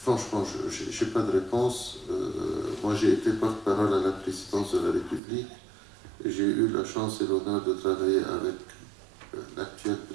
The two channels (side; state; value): left; drops out; at 5.2 s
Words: je n'ai pas de réponse. Moi, j'ai été porte-parole à la présidence de la République. J'ai eu la chance et l'honneur de travailler avec l'actuel